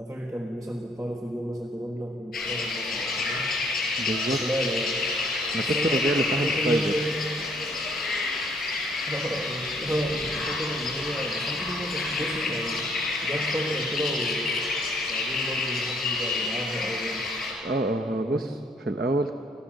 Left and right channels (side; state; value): both; normal; correlation 0.64